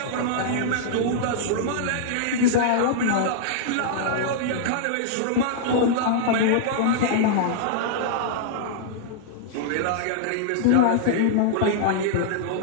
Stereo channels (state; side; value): different; both; correlation -0.01